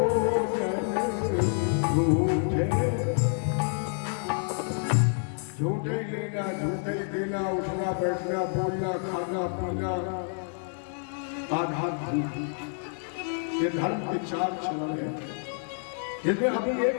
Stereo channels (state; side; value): silent; right; 59 dB below the other